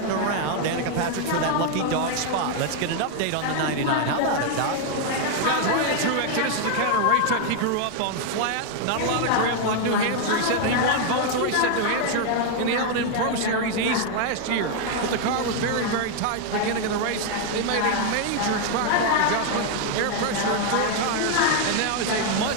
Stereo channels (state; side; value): different; both; correlation 0.00